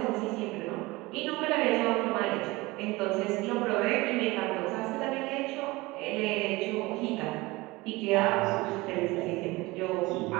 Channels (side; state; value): left; quieter; 21.7 dB